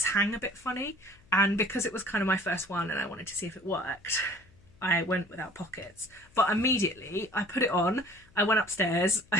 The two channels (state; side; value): noise; left; hum, 28 dB below the sound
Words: hang a bit funny, and because it was kind of my first one and I wanted to see if it worked, I went without pockets. But immediately I put it on, I went upstairs,